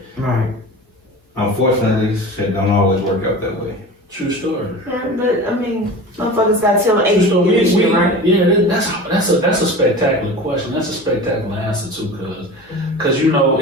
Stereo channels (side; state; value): both; normal; correlation 0.34